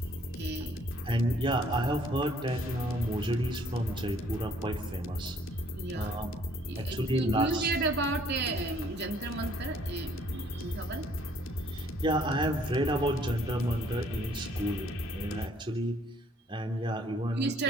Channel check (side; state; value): both; normal; correlation 0.62